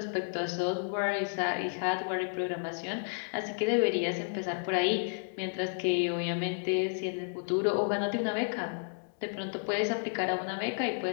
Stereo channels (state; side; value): silent; right; digital silence